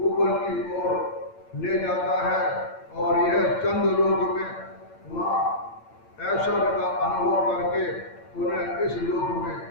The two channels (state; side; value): late; right; 8.8 ms